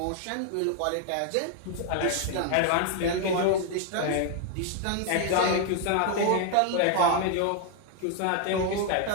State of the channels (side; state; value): both; different; correlation 0.00